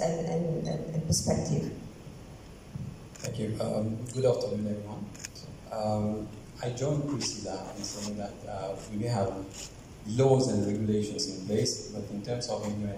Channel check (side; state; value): both; identical; correlation 1.00